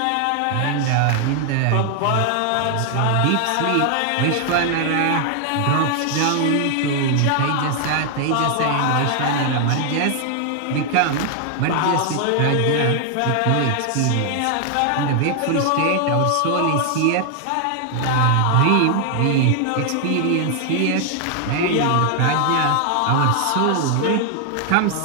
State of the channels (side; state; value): both; different; correlation 0.00